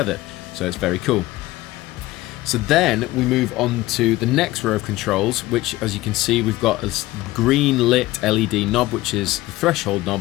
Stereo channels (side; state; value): right; quieter; 17.9 dB